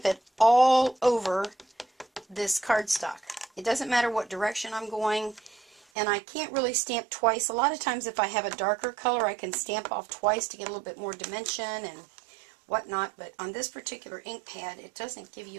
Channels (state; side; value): drops out; left; at 5.8 s